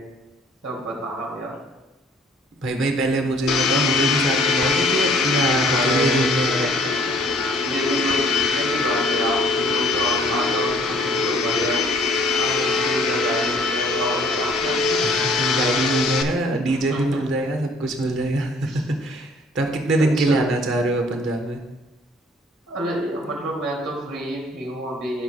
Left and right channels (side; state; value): both; normal; correlation 0.57